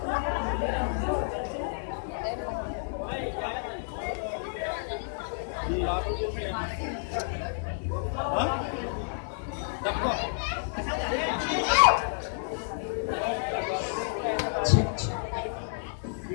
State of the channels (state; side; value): silent; right; digital silence